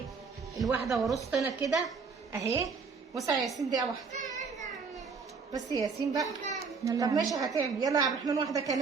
الواحده ورصت انا كده اهي. وسع يا ياسين دقيقه واحده بس يا ياسين بقى. طب ماشي هتعمل. يلا يا عبد الرحمن واحده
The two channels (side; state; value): left; quieter; 5.1 dB